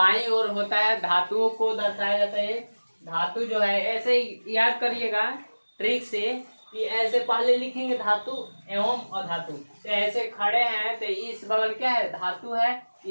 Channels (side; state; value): both; inverted; correlation -1.00